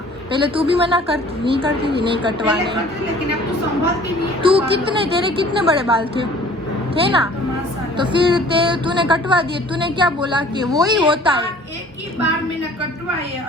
पहले तू भी मना करती नहीं करती थी, नहीं कटवाने, लेकिन अब तो संभालती नहीं है। तू तेरे कितने बड़े बाल थे ना, तो फिर तूने कटवा दिए। तूने क्या बोला कि वो ही होता है। एक ही बार मैंने कटवाए,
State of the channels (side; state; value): both; normal; correlation 0.51